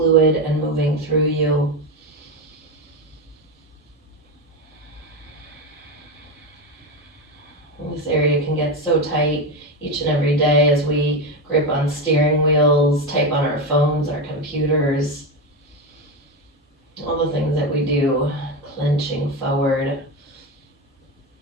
and moving through you? This area can get so tight each and every day as we grip on steering wheels, type on our phones, our computers, all the things that we do, clenching forward,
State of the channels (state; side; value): normal; both; correlation 0.15